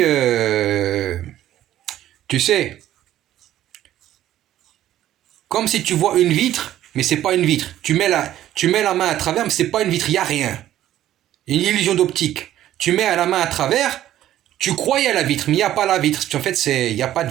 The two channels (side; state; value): left; quieter; 12.8 dB